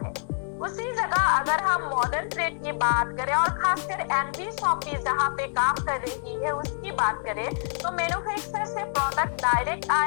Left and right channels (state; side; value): silent; right; 61 dB below the other